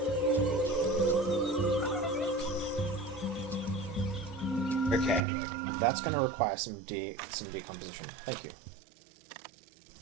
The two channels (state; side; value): drops out; left; at 5.2 s